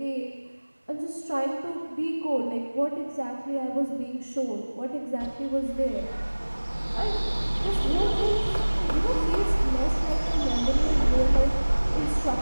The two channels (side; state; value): both; inverted; correlation -1.00